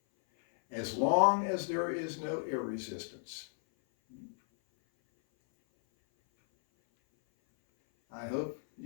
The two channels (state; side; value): silent; right; 55 dB below the other